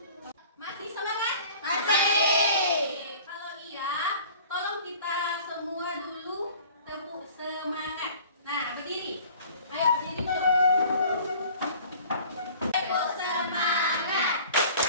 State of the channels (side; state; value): both; inverted; correlation -0.48